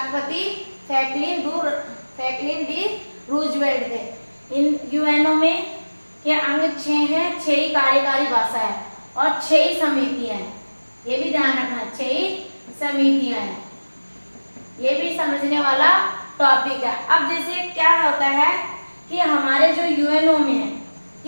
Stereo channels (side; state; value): both; inverted; correlation -1.00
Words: फ्रैंकलिन डी रूजवेल्ट थे। इन यूएनओ में के अंग 6 हैं, 6 ही कार्यकारी भाषा है और 6 ही समितियां हैं, ये भी ध्यान रखना, 6 ही समितियां हैं, ये भी समझने वाला टॉपिक है। अब जैसे क्या होता है कि हमारे जो यूएनओ में है